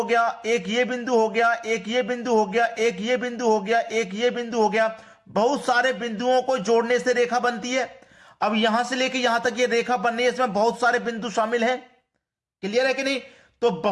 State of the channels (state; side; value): identical; both; correlation 1.00